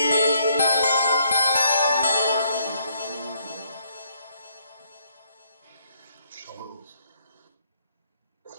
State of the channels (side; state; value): both; inverted; correlation -0.70